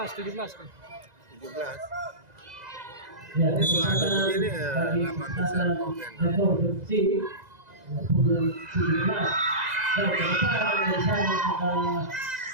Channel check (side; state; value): left; late; 2.0 ms